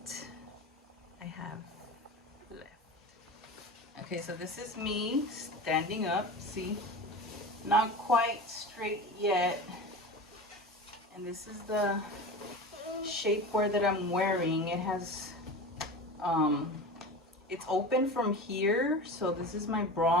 I have left. Okay, so this is me standing up. See, not quite straight yet. And this is the shapewear that I'm wearing. It has it's open from here, so this is my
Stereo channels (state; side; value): normal; both; correlation 0.30